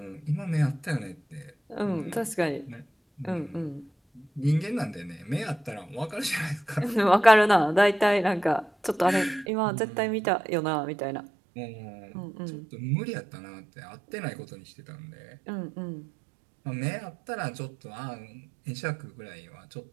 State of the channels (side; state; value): left; drops out; at 9.5 s